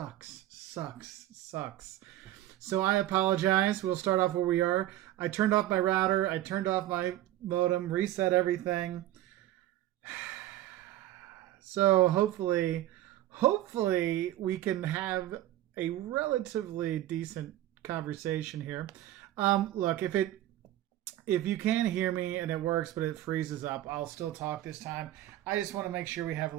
So I apologize. We'll start off where we are. I turned off my router. I turned off my modem, reset everything. So hopefully we can have a relatively decent conversation here. Look, if you can hear me and it works, but it freezes up, I'll still talk this time. I just want to make sure we have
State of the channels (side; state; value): left; quieter; 14.1 dB